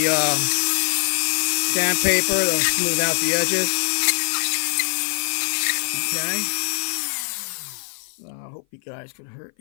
sandpaper to smooth out the edges. Okay. I hope you guys could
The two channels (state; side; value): silent; right; 57 dB below the other